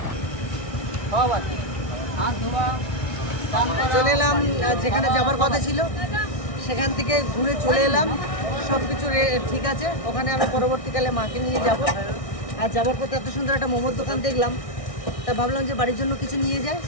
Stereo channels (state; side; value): late; right; 1.6 ms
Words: চলে এলাম যেখানে যাবার কথা ছিল, সেখান থেকে ঘুরে চলে এলাম। সব কিছু ঠিক আছে। ওখানে আমি পরবর্তীকালে মাকে নিয়ে যাব। আর যাবার পথে এত সুন্দর একটা মোমোর দোকান দেখলাম, তা ভাবলাম যে বাড়ির জন্য কিছু নিয়ে যাই।